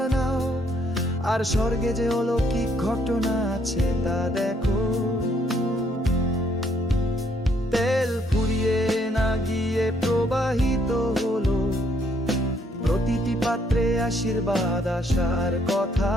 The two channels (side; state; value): both; normal; correlation 0.69